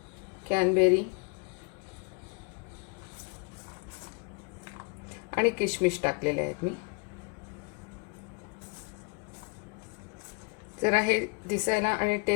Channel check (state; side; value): quieter; right; 31.1 dB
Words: कॅनबेरी आणि किशमिश टाकलेले आहेत मी. जरा हे दिसायला आणि